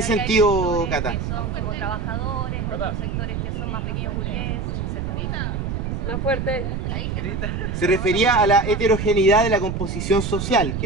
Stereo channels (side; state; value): right; noise; rumble, 3 dB below the sound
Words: sentido, Cata? Que son como trabajadores, otros sectores que son más pequeños burgueses, etc. Más fuerte. Se refería a la heterogeneidad de la composición social,